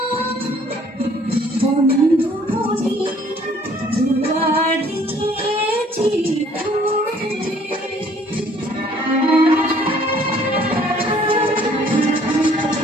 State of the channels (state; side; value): normal; both; correlation 0.59